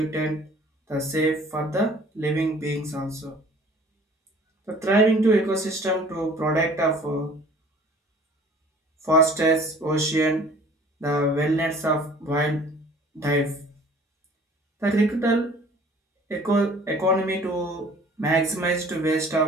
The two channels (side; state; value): both; normal; correlation 0.50